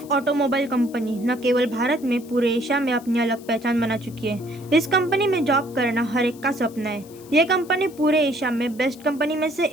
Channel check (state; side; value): noise; left; hiss, 23 dB below the sound